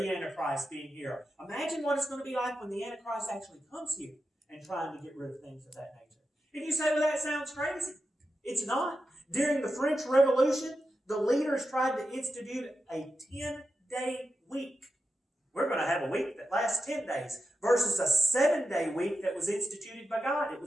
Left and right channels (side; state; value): both; normal; correlation 0.89